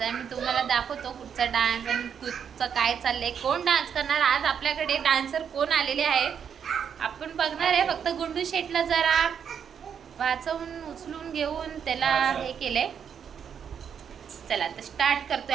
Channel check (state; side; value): quieter; left; 7.7 dB